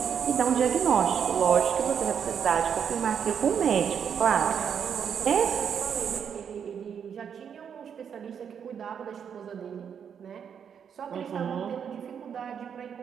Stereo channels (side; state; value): left; quieter; 7.7 dB